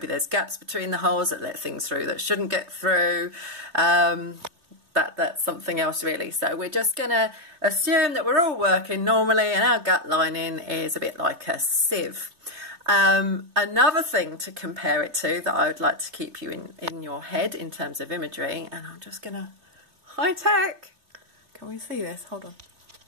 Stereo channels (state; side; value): late; left; 3.3 ms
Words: there's gaps between the holes that let things through that shouldn't get through. That's something else really. So we're just going to assume that we're all working normally and our gut lining is a bit like a sieve. Another thing to compare it to that I would like to keep you in your head in terms of imagery, and I'm just going to high tech. Can we see this? Hold on.